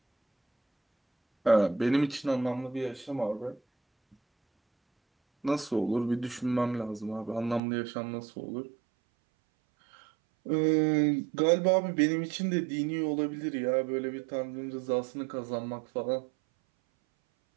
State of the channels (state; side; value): drops out; left; at 7.6 s